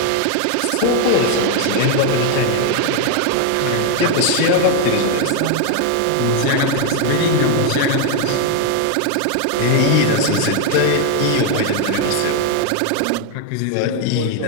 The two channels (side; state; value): both; different; correlation 0.01